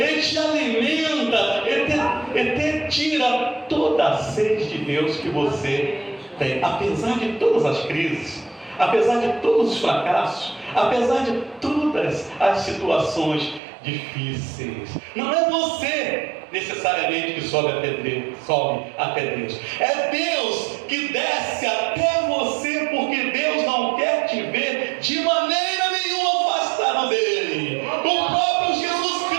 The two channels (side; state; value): left; drops out; at 13.6 s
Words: te alimenta, e te tira toda a sede de Deus que você tem. Apesar de todas as crises, apesar de todos os fracassos, apesar de todas as situações difíceis, não é você necessariamente que sobe até Deus. É Deus que desce até você, porque Deus não quer te ver de maneira nenhuma afastado dele. O próprio Jesus